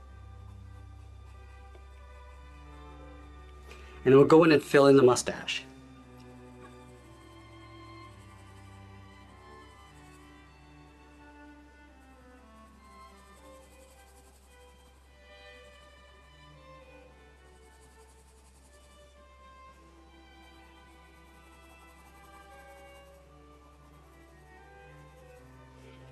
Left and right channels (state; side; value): identical; both; correlation 1.00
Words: And then we'll go in and fill in the mustache.